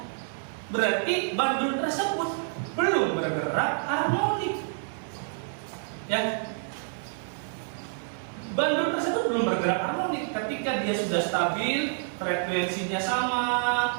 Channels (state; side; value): silent; left; digital silence